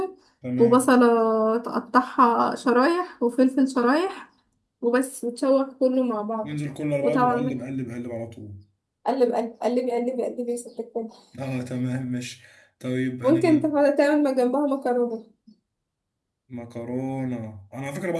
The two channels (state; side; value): identical; both; correlation 1.00